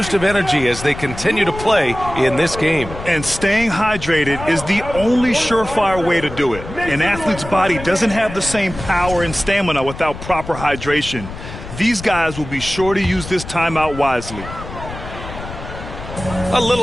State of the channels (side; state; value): left; noise; rumble, 11 dB below the sound